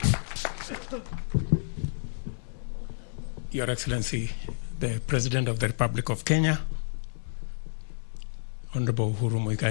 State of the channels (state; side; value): silent; right; digital silence